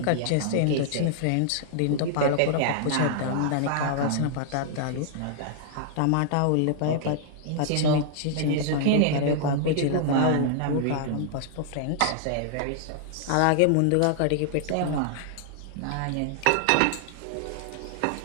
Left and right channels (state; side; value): different; both; correlation -0.01